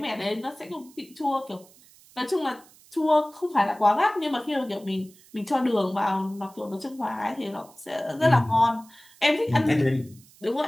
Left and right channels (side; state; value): right; noise; hiss, 26 dB below the sound